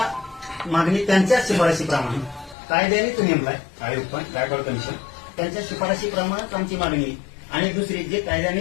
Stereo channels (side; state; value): right; drops out; at 2.6 s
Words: मागणी त्यांच्या शिफारशीप्रमाणे कायद्यानेच नेमलाय आयोग, पण गायकवाड कमिशन त्यांच्या शिफारशीप्रमाणेच आमची मागणी. आणि दुसरी जे